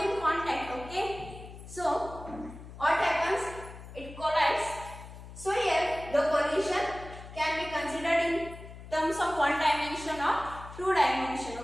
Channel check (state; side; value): noise; left; hum, 14 dB below the sound